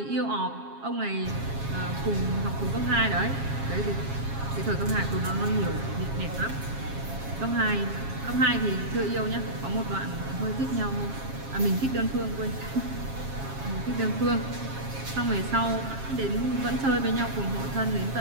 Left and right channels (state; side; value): late; left; 7.4 ms